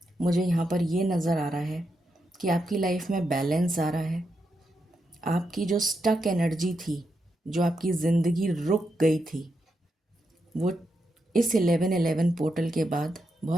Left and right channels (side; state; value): both; normal; correlation 0.84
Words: मुझे यहाँ पर ये नज़र आ रहा है कि आपकी लाइफ में बैलेंस आ रहा है। आपकी जो स्टक एनर्जी थी, जो आपकी ज़िंदगी रुक गई थी, वो इस 1111 पोर्टल के बाद